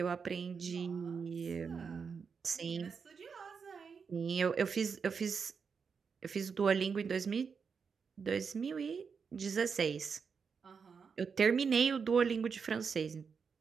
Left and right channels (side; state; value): left; quieter; 5.9 dB